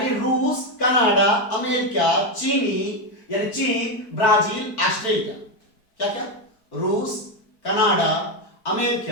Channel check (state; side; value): late; right; 4.6 ms